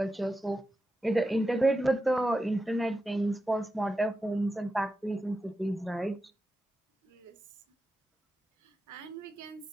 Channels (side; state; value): both; normal; correlation 0.91